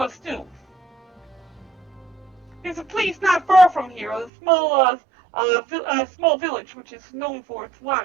do. There's a place not far from here, a small village which is known for its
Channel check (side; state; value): left; drops out; at 4.3 s